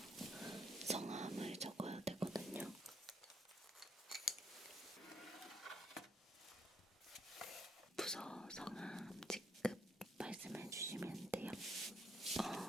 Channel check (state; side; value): normal; both; correlation 0.72